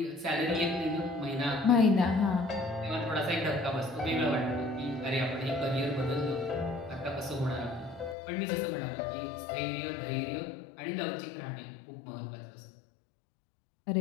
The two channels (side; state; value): right; drops out; at 8.2 s